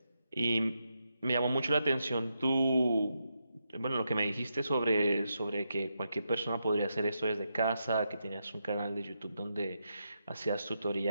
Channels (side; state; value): both; inverted; correlation -0.84